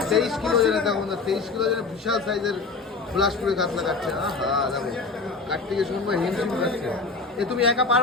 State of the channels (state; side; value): quieter; right; 4.1 dB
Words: 23 কিলো ওজনের দেখো, 23 কিলো ওজনের বিশাল সাইজের বিলাসপুরে কাতলা কাটছে। হ্যাঁ দেখো, কাটতে গিয়ে সুমন ভাই হিমশিম কাটছে। এ তুমি একা